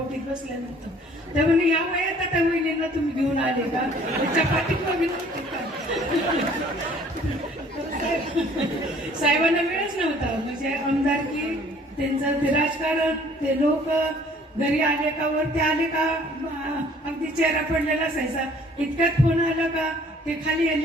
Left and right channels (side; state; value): both; normal; correlation 0.56